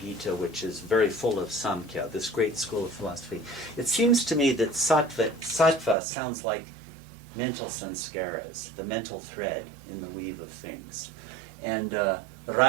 which is very full of Samkhya, this great school of philosophy, it seems to me that sattva sounds like mental sanskaras, the mental thread in the weave of things. And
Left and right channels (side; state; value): left; drops out; at 6.0 s